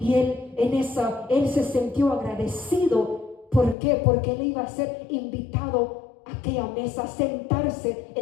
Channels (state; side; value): drops out; right; at 3.8 s